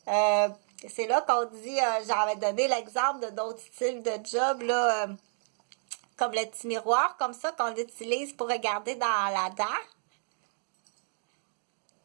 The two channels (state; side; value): silent; left; digital silence